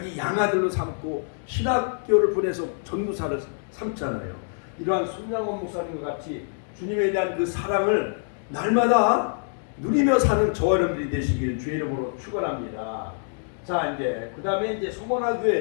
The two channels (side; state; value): right; silent; digital silence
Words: 양아들로 삼고 신학교를 보내서 전도사를 삼잖아요. 이러한 손양원 목사님과 같이 주님에 대한 그 사랑을 날마다 누리며 사는 저와 여러분들이 되시길 주의 이름으로 축원합니다. 자, 이제 그 다음에 이제 서머나